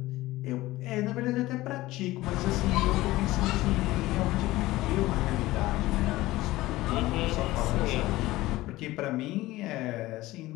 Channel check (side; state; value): right; quieter; 17.9 dB